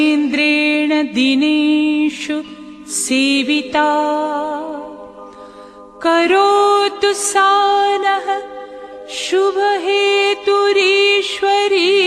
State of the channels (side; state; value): both; identical; correlation 1.00